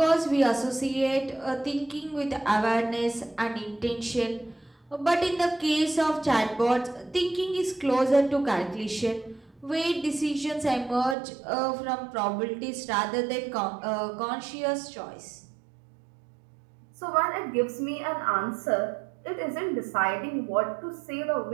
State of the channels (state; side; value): drops out; left; at 11.2 s